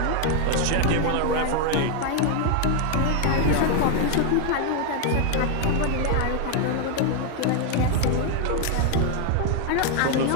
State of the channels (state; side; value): different; both; correlation 0.01